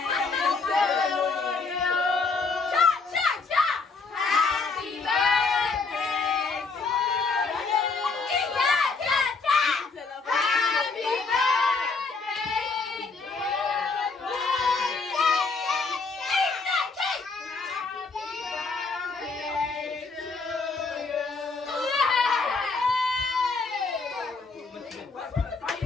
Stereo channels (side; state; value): right; quieter; 4.3 dB